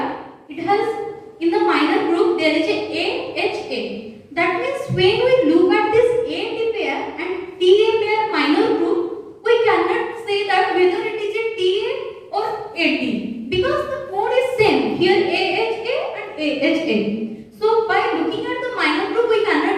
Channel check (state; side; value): identical; both; correlation 1.00